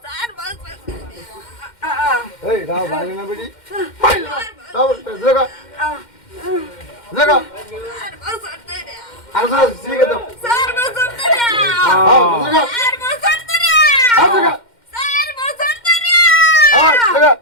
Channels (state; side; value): late; right; 2.1 ms